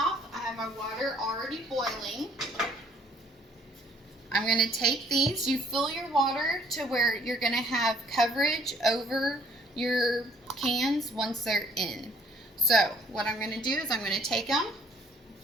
I have my water already boiling. I'm going to take these. You fill your water to where you're going to have coverage over your cans once they're in. So what I'm going to do is I'm going to take them.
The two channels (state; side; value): normal; both; correlation 0.61